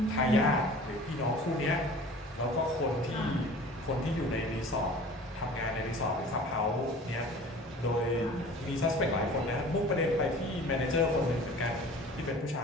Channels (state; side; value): normal; both; correlation 0.44